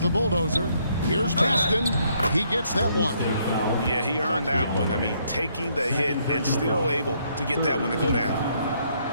Bulldozer. Here's Baston. He gets that one. Yeah, he earned that one. I mean, taking the hit and still able to get that one to go down.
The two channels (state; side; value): inverted; both; correlation -0.71